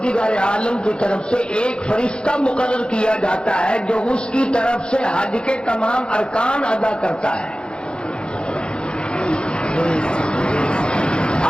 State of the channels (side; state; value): right; late; 0.051 ms